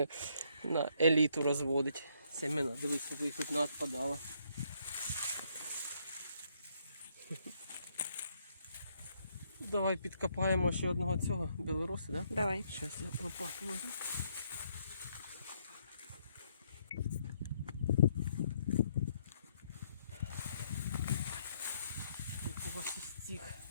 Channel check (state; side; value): inverted; both; correlation -0.71